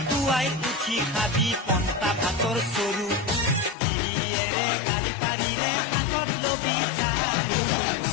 উঠি খাবি পন্তা ভাতৰ চৰু গিৰিয়েৰে গালি পাৰিলে হাতত লবি চাৰু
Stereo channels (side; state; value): right; drops out; at 3.8 s